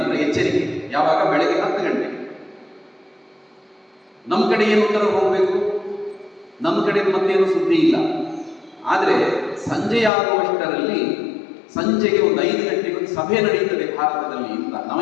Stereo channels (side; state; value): right; drops out; at 10.1 s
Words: ಎಚ್ಚರಿಕೆ. ಯಾವಾಗ? ಬೆಳಗ್ಗೆ 10 ಗಂಟೆ. ನಮ್ಮ ಕಡೆ ಏನು ಉತ್ತರ ಹೋಗಬೇಕು? ನಮ್ಮ ಕಡೆ ಮತ್ತೇನು ಸುದ್ದಿ ಇಲ್ಲ. ಆದ್ರೆ ಸಂಜೆ ಆಗುವಷ್ಟರಲ್ಲಿ, ಸಂಜೆಗೆ ಒಂದು 5 ಗಂಟೆಗೆ ಒಂದು ಸಭೆ ನಡೆಯುತ್ತದೆ ಭಾರತದಲ್ಲಿ ಅಂತ